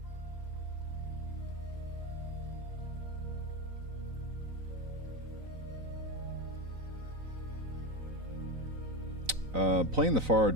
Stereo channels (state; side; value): late; left; 3.9 ms